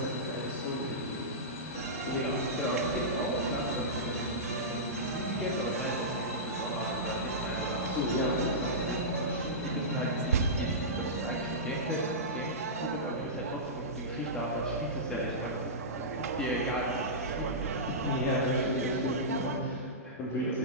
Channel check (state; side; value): normal; both; correlation -0.16